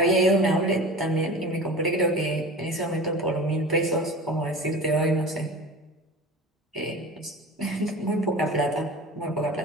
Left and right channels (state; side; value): normal; both; correlation 0.35